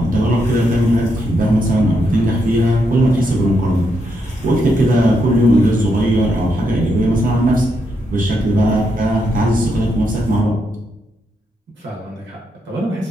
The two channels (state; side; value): normal; both; correlation 0.80